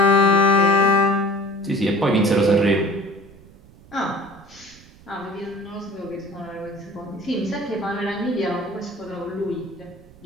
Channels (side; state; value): right; noise; rumble, 24 dB below the sound